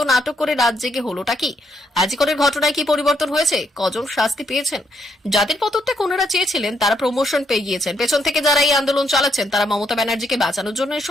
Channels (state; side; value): normal; both; correlation 0.74